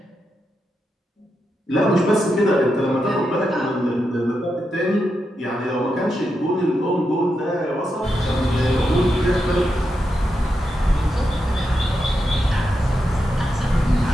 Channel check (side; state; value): both; normal; correlation 0.86